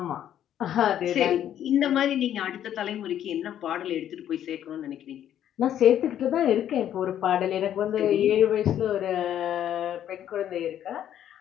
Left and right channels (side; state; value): right; quieter; 10.7 dB